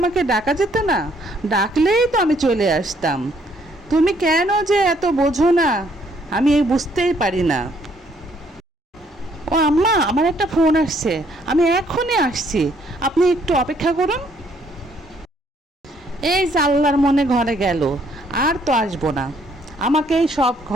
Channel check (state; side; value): normal; both; correlation 0.67